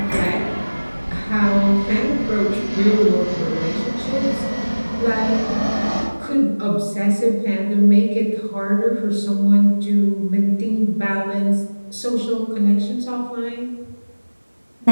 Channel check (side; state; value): both; inverted; correlation -1.00